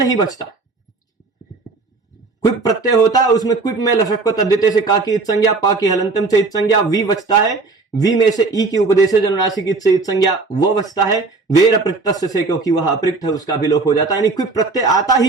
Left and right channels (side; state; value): left; quieter; 3.9 dB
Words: बचता। क्विप प्रत्यय होता है उसमें क्विप में लशक को तद्धिते से का की इत संज्ञा, पा की हलंतम से इत संज्ञा, वी बचता है, वी में से ई की उपदेश जनुनासिक इत से इत संज्ञा वो बचता है, वेर अपृक्त से क्योंकि वह अपृक्त है उसका भी लोप हो जाता है। यानी क्विप प्रत्यय आता